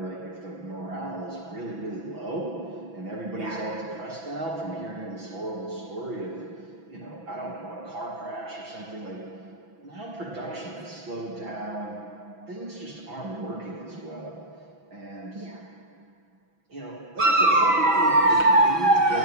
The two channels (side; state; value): left; late; 6.0 ms